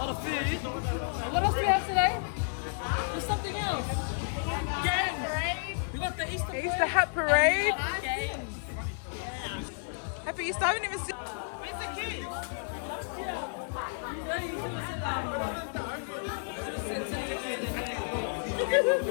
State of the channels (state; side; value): silent; right; digital silence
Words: of food. And what else do we have today? There's something else. Games! We got the Easter parade. Easter hat parade! Games. Happy Easter! I haven't even seen... Where's the kids? Yeah, you should have said that.